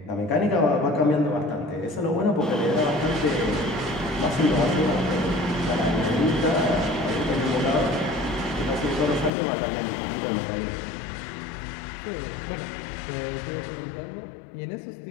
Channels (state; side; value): drops out; right; at 9.3 s